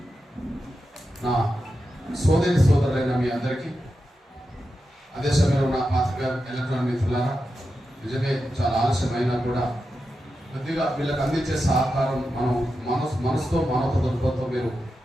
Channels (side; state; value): both; normal; correlation 0.90